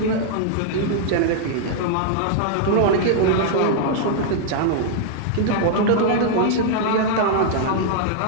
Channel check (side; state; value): both; different; correlation -0.01